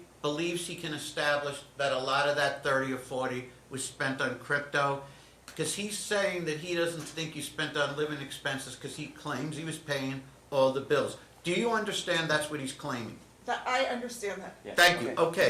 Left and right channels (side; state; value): both; identical; correlation 1.00